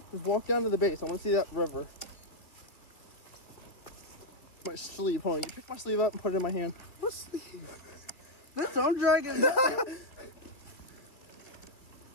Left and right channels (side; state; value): right; late; 2.3 ms